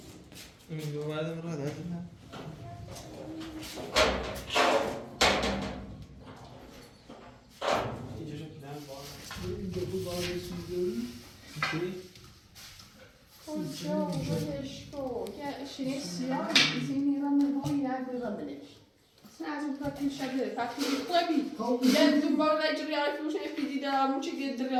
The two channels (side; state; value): both; identical; correlation 1.00